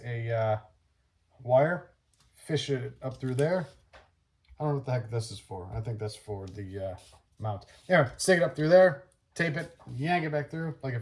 a wire, fish it up through there. I don't know what the heck this is for. I think that's for the mount. Anyway, stick it up through there, tape it, yank it back through like a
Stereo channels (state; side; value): identical; both; correlation 1.00